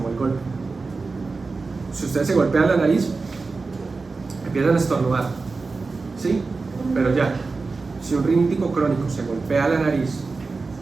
el golpe. Si ustedes se golpean la nariz, empiezan a estornudar, ¿sí? Pero ya, si un rinítico crónico se golpea la nariz,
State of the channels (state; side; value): quieter; left; 4.1 dB